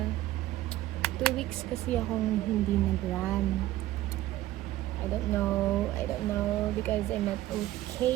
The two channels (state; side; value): quieter; left; 15.1 dB